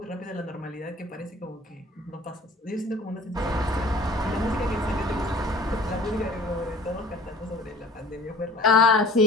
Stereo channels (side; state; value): both; normal; correlation 0.47